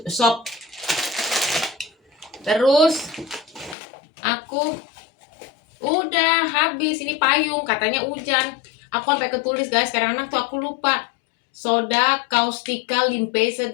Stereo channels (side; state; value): right; drops out; at 3.8 s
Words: sop. Terus aku udah habis ini payung, katanya hujan. Aku sampai ketulis guys, sekarang tuh aku lupa. Soda caustica limpeza